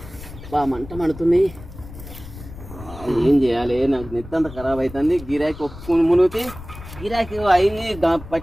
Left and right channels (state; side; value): noise; left; rumble, 15 dB below the sound